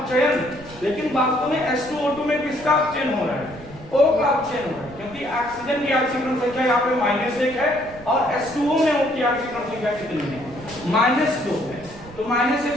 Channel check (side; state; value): right; noise; rumble, 19 dB below the sound